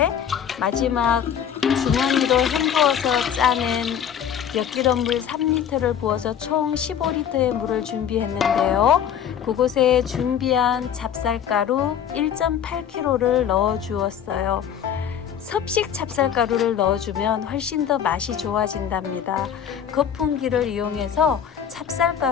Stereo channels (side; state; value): right; quieter; 8.7 dB